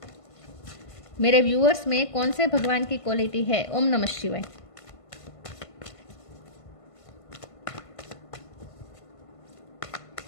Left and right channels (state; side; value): late; right; 1.5 ms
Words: मेरे व्यूअर्स में कौन से भगवान की क्वालिटी है। ओम नमः शिवाय।